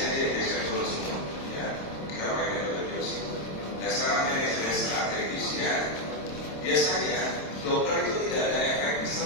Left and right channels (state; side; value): late; right; 26 ms